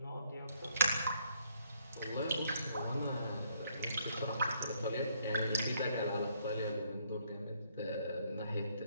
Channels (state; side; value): inverted; both; correlation -0.68